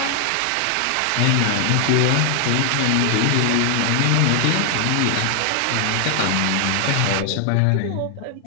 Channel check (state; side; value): different; both; correlation 0.00